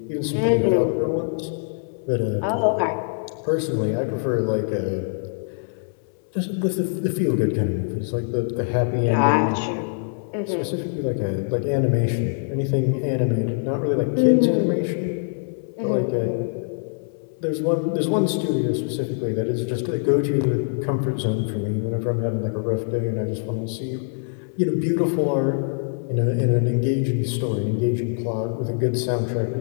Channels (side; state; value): right; silent; 62 dB below the other